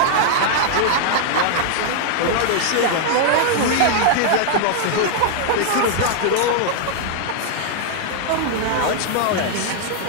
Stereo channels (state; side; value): different; both; correlation -0.01